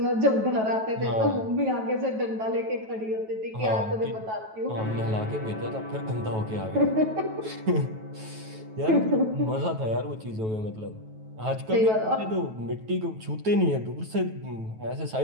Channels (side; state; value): left; late; 9.2 ms